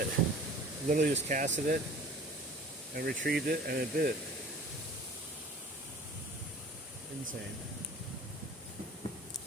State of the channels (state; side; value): normal; both; correlation 0.46